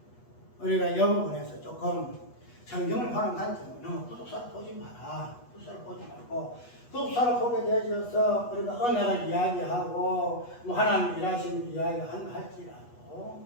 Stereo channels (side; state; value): right; late; 8.2 ms